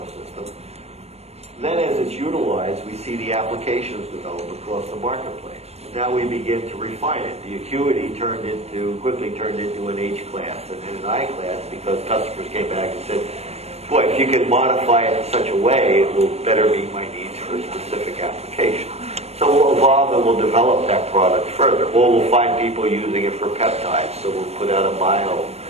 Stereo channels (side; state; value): left; late; 0.31 ms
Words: system. Then as it's utilized, we see the applications develop across the marketplace. Now we begin to refine it. The acuity quickly turned into an H class and then an I class because customers came back and said, boy, if you could modify it in such a way, it will better meet my needs for a specific application. So we'll evolve and we'll develop that product further. Or we'll find people using it for peptides. So we'll put out a